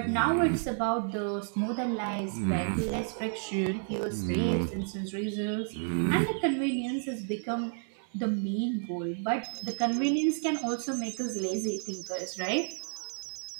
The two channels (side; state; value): left; silent; 57 dB below the other